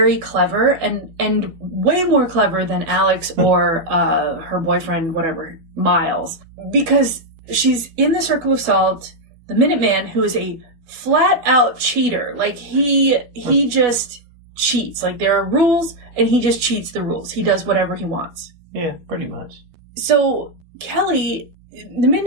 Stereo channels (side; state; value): left; late; 12 ms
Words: clever and way more clever than Alex or her boyfriend, whatever, Miles. Because she's in the Circle of Salt, the Minuteman, who is a flat-out cheater. Like, he just cheats. Like, there are rules, and he just cheats the rules. He does whatever he wants. Yeah, pretty much. So, Kelly, the